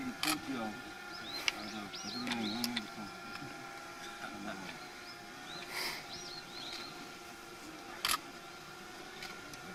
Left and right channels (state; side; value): identical; both; correlation 1.00